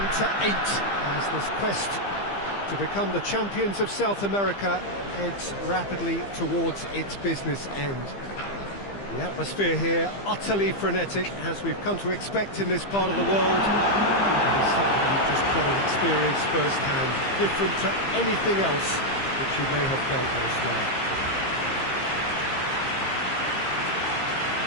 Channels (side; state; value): right; late; 15 ms